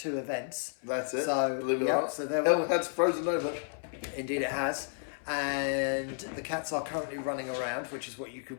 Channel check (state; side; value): silent; right; 56 dB below the other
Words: events. That's it. So believe it or not. So Hell has frozen over. Indeed, it has. And the cats are currently running around, which is what you